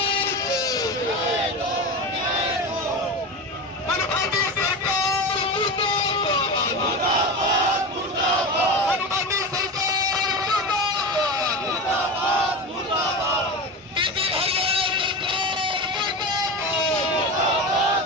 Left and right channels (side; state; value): both; normal; correlation 0.24